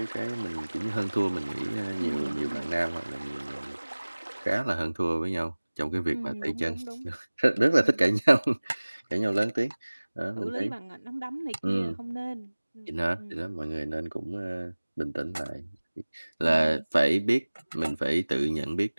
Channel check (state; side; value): inverted; both; correlation -1.00